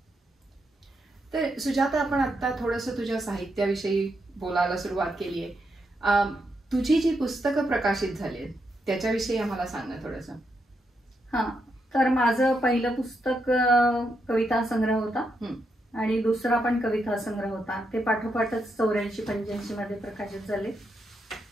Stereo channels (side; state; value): both; normal; correlation 0.82